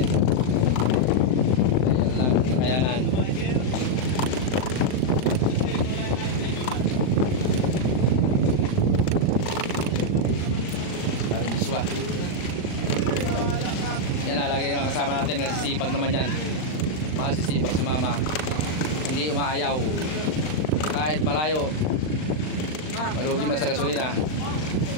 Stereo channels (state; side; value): late; right; 39 ms